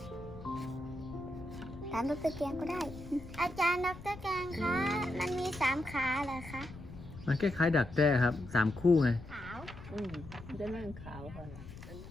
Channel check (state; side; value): noise; left; rumble, 15 dB below the sound